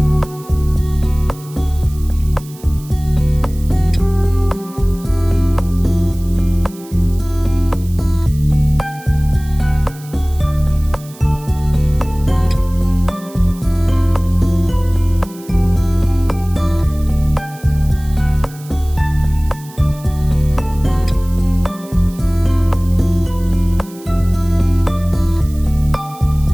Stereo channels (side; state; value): right; noise; hiss, 21 dB below the sound